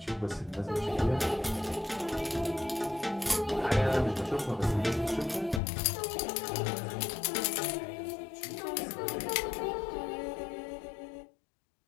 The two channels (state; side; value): drops out; right; at 5.6 s